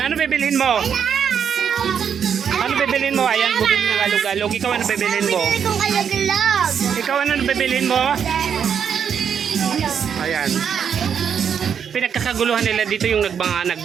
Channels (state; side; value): quieter; left; 7.6 dB